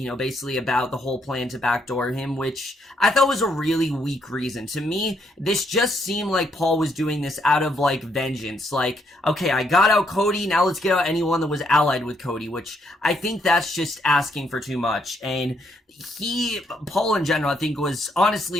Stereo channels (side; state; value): both; normal; correlation 0.74